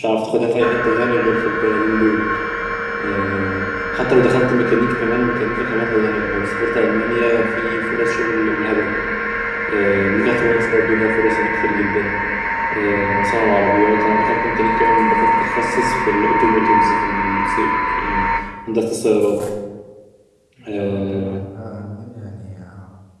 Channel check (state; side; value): identical; both; correlation 1.00